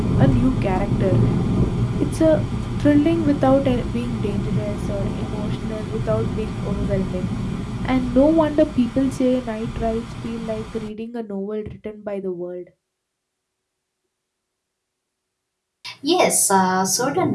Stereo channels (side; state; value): both; identical; correlation 1.00